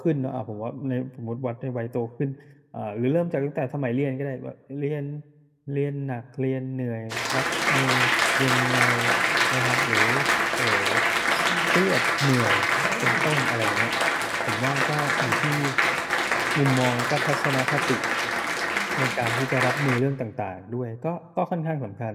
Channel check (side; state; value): both; identical; correlation 1.00